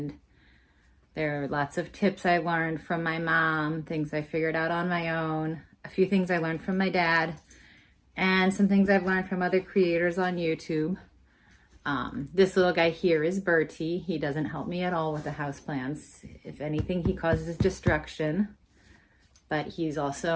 there are lots of tips I learned from my mom, things I figured out on my own, a few things I learned from my dad, and some things I've learned from other creators on YouTube. This little guy here is Bertie. He doesn't help me at all with the houseplants. If anything, he causes destruction, but he's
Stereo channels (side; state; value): both; identical; correlation 1.00